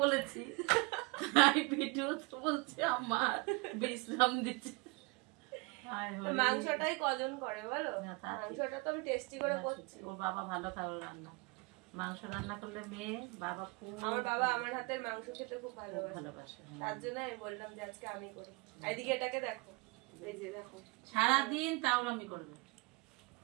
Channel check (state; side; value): quieter; left; 25.9 dB